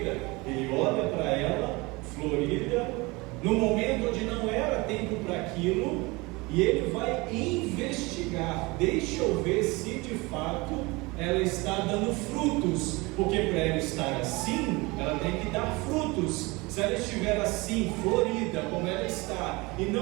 Ele olha para ela, florida, no momento onde não era tempo para aquilo, e Ele vai investigar. Deixa eu ver se de fato ela está dando frutos, porque para ela estar assim, ela tem que dar frutos. Se ela estiver assim, florida, como ela está, e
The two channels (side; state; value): left; quieter; 24.3 dB